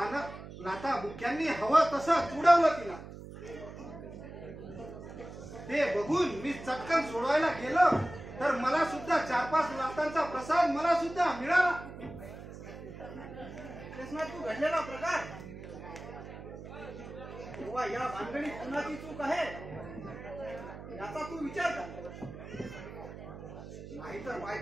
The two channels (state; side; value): noise; right; hum, 13 dB below the sound